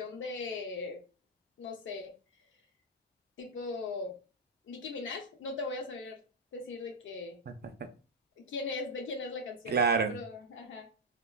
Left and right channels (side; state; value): both; normal; correlation -0.03